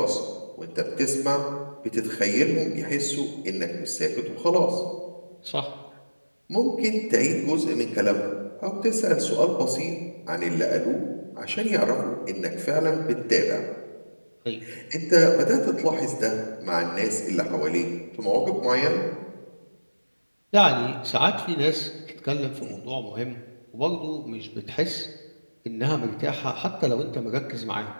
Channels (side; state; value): both; inverted; correlation -1.00